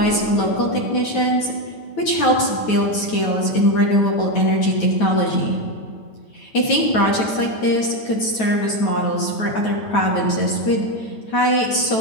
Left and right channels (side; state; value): right; late; 9.2 ms